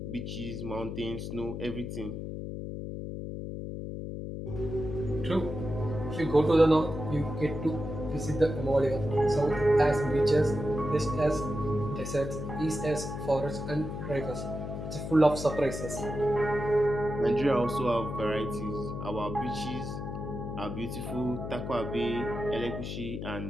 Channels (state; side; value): noise; left; hum, 6 dB below the sound